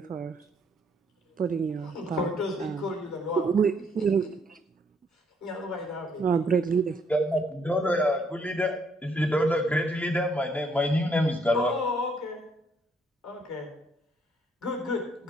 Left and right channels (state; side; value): normal; both; correlation 0.68